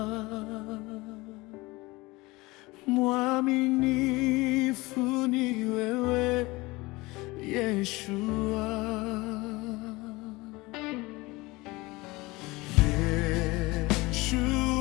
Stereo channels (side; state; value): right; quieter; 22.2 dB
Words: mwaminifu ni wewe Yeshua.